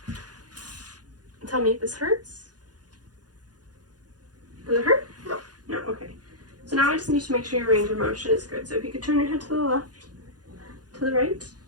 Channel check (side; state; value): left; late; 0.69 ms